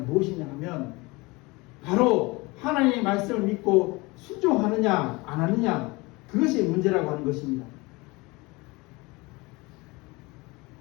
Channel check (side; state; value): right; quieter; 24.3 dB